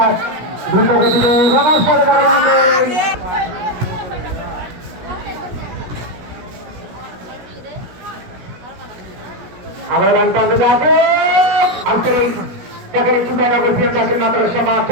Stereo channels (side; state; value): left; late; 17 ms